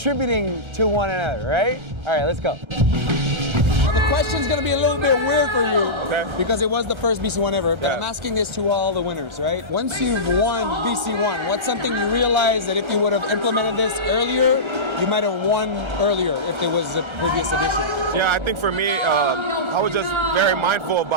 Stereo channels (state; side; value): late; left; 1.3 ms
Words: to one another, right? All right, let's go. Now the question's gonna be a little bit weird for you, because it was the first BC1 ever, but I'm asking this to all the winners, right? Once you've won BC1, what's something you realize that if you would have implemented this earlier, you might have won earlier if there was a previous edition? Yeah, I think for me, I was just very mindful